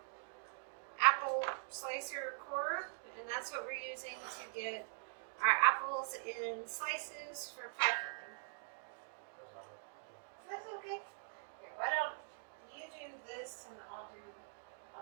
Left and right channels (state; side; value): silent; left; digital silence